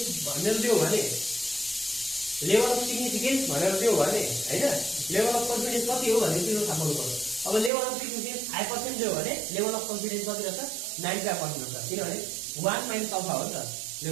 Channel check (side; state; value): left; drops out; at 7.7 s